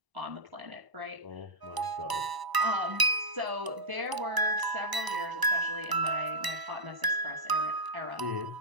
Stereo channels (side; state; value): left; late; 1.0 ms